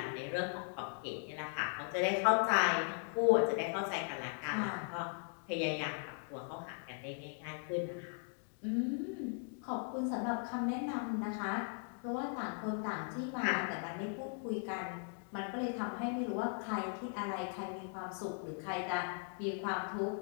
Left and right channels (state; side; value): silent; right; 52 dB below the other